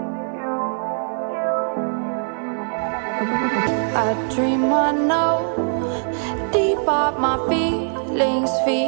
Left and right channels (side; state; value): left; silent; 56 dB below the other